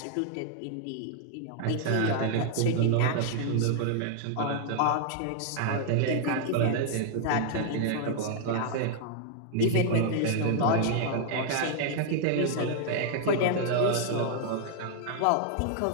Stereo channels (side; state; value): both; different; correlation -0.01